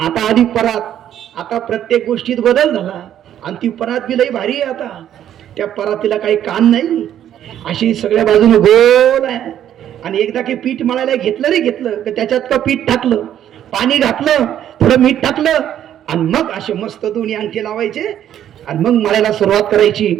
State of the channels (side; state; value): left; quieter; 10.7 dB